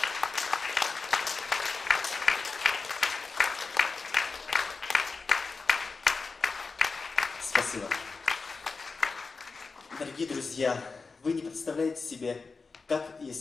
Спасибо. Дорогие друзья, вы не представляете себе, как я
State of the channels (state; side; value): quieter; right; 4.4 dB